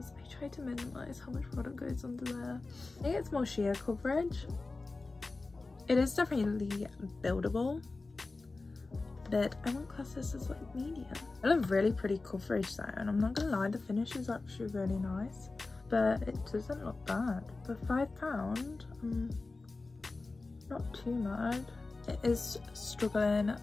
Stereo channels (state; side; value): quieter; right; 3.5 dB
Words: I try to minimize how much product goes under there. I think it's more sheer coverage. It is definitely buildable, but I won't class this as like medium. I love really pretty coverage though, and I'm not gonna lie, the finish is actually really nice, but it doesn't look bad. For £5, not too mad. It is struggling